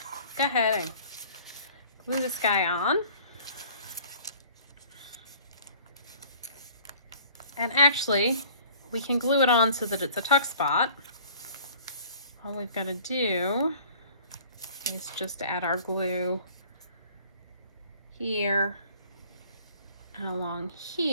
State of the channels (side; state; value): both; inverted; correlation -0.50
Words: go ahead and glue this guy on. And actually, we can glue it on so that it's a tuck spot. All we've got to do is just add our glue here and along